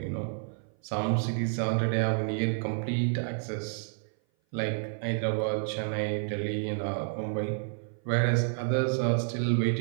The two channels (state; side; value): silent; left; 56 dB below the other